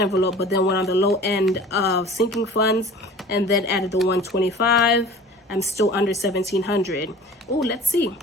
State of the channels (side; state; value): both; normal; correlation 0.43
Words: but then went on the low end of sinking funds and then added the 125, I'm still under $1,700. Oh, let's see.